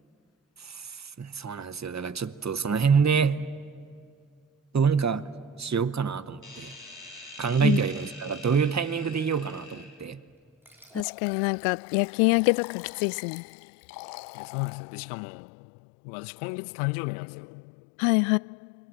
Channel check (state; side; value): drops out; right; at 11.1 s